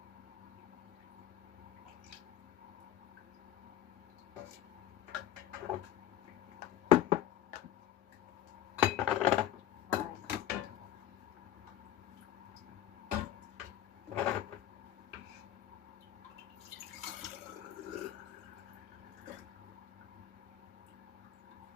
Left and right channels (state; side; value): quieter; right; 11.7 dB